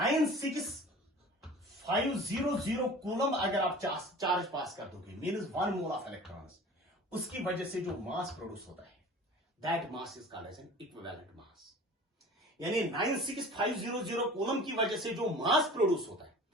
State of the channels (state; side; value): normal; both; correlation 0.42